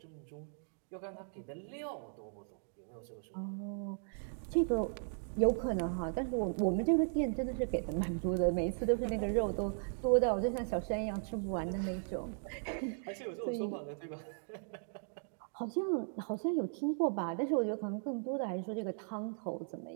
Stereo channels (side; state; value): left; silent; digital silence